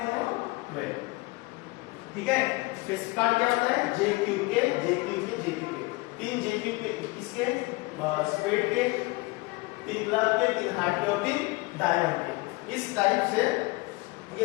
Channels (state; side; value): quieter; right; 24.1 dB